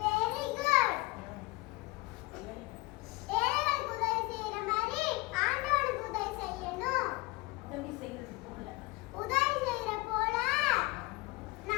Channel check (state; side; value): quieter; right; 23.4 dB